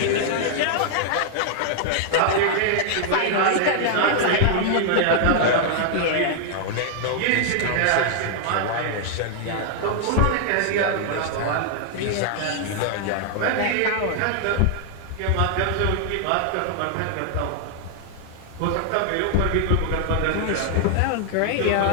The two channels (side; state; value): both; different; correlation -0.01